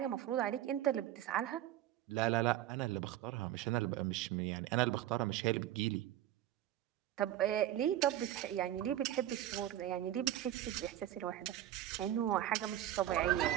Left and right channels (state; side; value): quieter; left; 12.7 dB